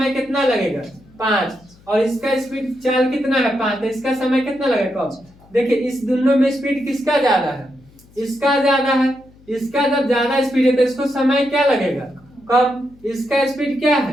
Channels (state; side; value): noise; left; hum, 27 dB below the sound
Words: कितना लगेगा, 5, और इसका स्पीड चाल कितना है, 5, तो इसका समय कितना लगेगा, कम। देखिए इस दोनों में स्पीड किसका ज्यादा है, इसका ज्यादा है। इसका जब ज्यादा स्पीड है तो इसको समय क्या लगेगा, कम। इसका स्पीड क्या